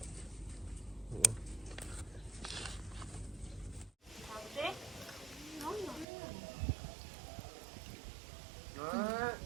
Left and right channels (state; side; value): drops out; left; at 6.1 s